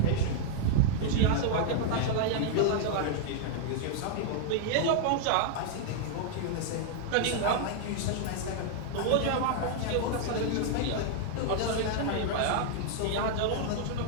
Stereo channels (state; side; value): different; both; correlation -0.01